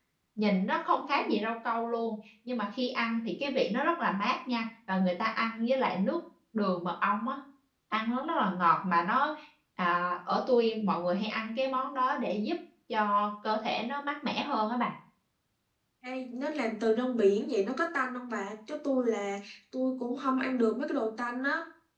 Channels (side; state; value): both; identical; correlation 1.00